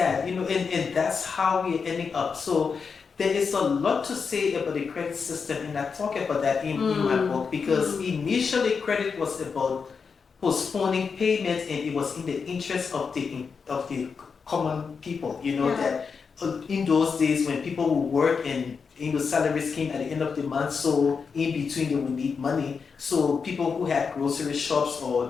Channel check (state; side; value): quieter; right; 5.6 dB